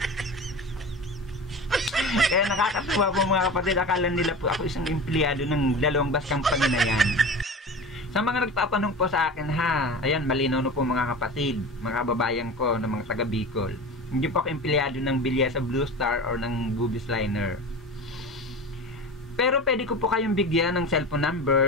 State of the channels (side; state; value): both; normal; correlation 0.32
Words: Kaya nakakatuwa po, mga kapatid, akala nila po ako isang empleyado ng dalawang bus company na yan. Sa mga nagtatanong po sa akin, ayan, malinaw na po, mga kapatid, mga kababayan ko na mga taga Bicol. Hindi po ako empleyado ng Bilyesa Blue Star or ng Bubis Liner. Pero pwede ko po kayong bigyan ng cellphone